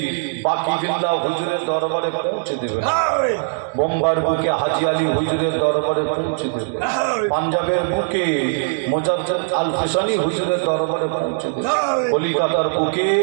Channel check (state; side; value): silent; left; digital silence